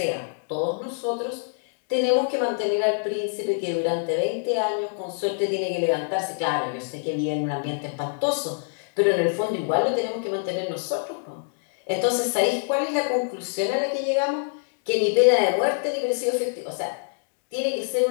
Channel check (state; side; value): silent; right; digital silence